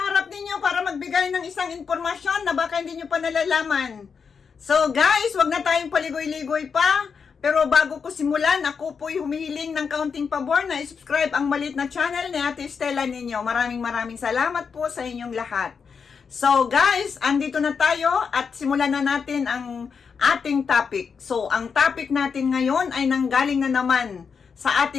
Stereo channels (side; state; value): right; quieter; 6.0 dB